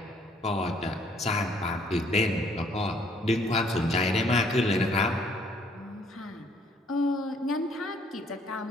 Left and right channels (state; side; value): normal; both; correlation 0.63